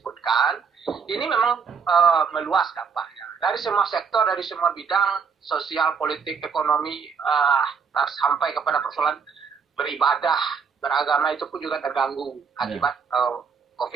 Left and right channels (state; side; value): quieter; left; 6.0 dB